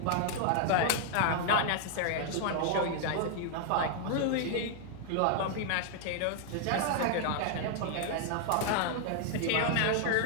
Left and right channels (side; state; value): both; different; correlation 0.00